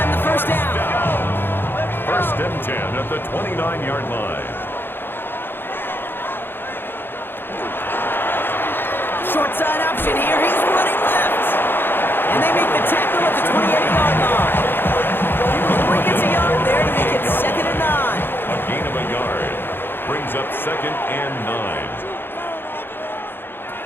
the first down. First and 10 at the 29-yard line. Short side option here. He's running left. And they make the tackle at the 28-yard line. He gets a yard there to make it 2nd and 9. A gain of a yard. Brings up 2nd and 9.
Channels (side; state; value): right; late; 0.10 ms